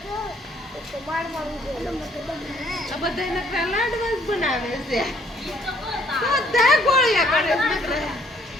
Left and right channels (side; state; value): both; normal; correlation 0.64